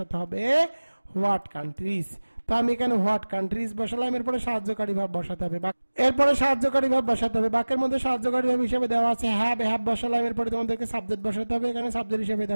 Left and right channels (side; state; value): both; inverted; correlation -1.00